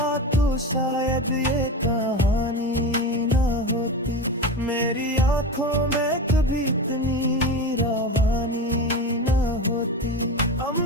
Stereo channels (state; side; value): normal; both; correlation 0.24